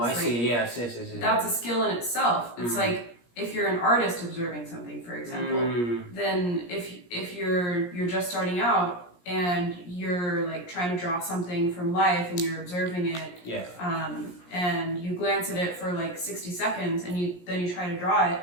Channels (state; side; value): late; right; 17 ms